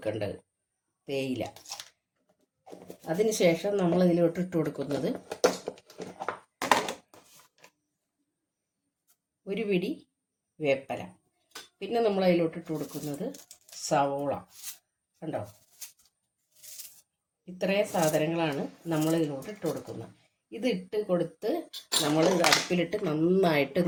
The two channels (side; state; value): both; identical; correlation 1.00